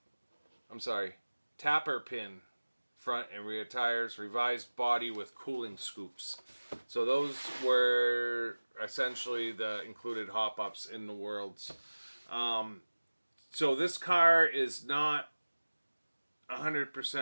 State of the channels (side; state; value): both; inverted; correlation -1.00